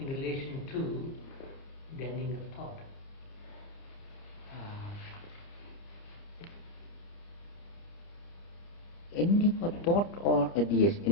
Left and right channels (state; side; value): late; right; 30 ms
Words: relation to the ending of thought? Ending of thought or